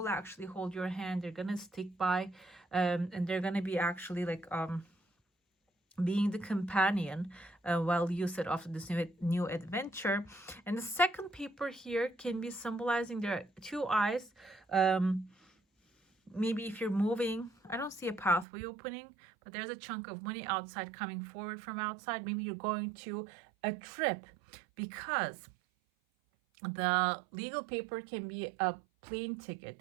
actually hold your hand. They're gonna stick by, and they're gonna be actually like being the companion while you set off to this new adventure. And the second paper here can be symbolizing there are two eyes. Maybe if you're moving, I don't see a pathway opening, but there's a chunk of money outside coming forward from outside. Maybe you're going to a trip, because the legal paper can be a plane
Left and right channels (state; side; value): drops out; left; at 18.4 s